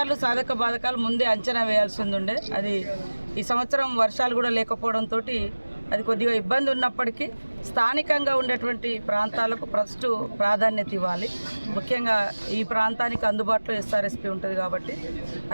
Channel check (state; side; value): inverted; both; correlation -1.00